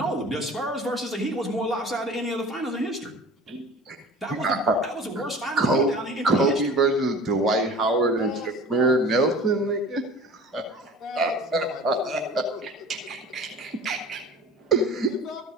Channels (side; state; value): both; normal; correlation 0.41